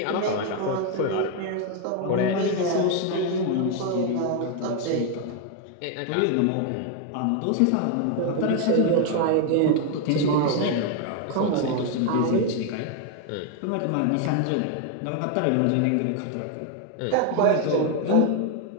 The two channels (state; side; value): different; both; correlation 0.01